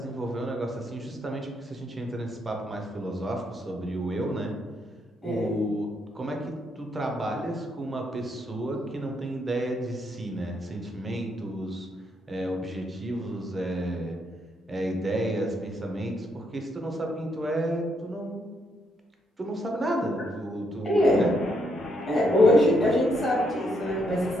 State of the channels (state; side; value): normal; both; correlation 0.76